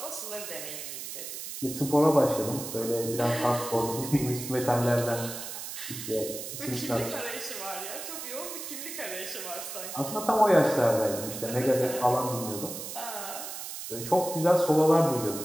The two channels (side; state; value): right; noise; hiss, 8 dB below the sound